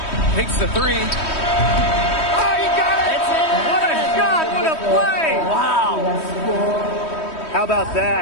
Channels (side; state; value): right; late; 3.1 ms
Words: Takes the three. Oh, you got it! What a shot! What a play! Wow. How about